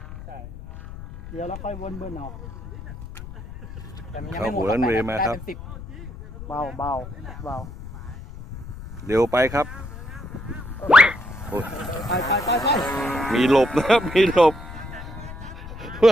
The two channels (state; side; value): noise; left; rumble, 12 dB below the sound